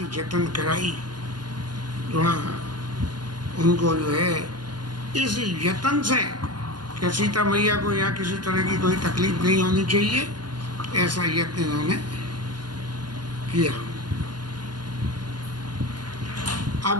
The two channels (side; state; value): left; late; 0.71 ms